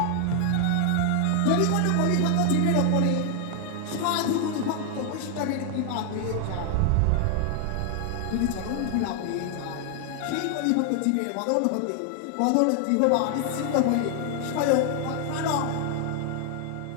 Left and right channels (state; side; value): different; both; correlation 0.00